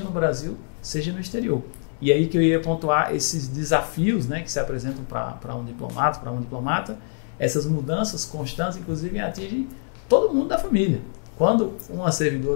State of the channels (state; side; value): silent; right; digital silence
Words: no Brasil, seja no exterior. E aí que eu ia pontuar esses desafios, né, que se apresentam para um diplomata, essas mudanças constantes, inclusive, atingem todo mundo da família. Quando uma